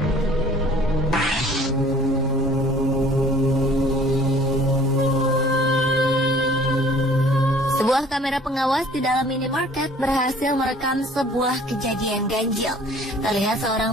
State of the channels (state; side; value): normal; both; correlation 0.52